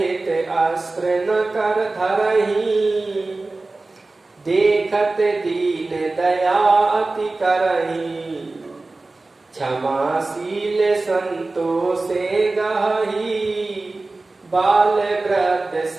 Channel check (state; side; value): quieter; left; 3.3 dB